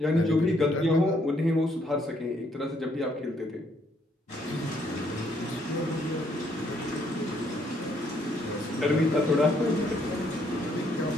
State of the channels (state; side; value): normal; both; correlation 0.70